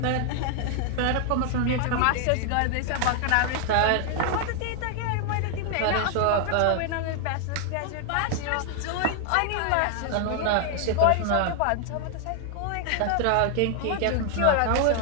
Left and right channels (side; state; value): both; different; correlation 0.00